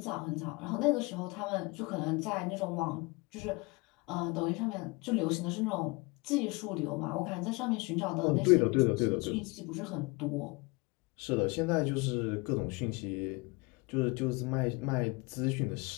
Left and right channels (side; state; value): right; quieter; 26.8 dB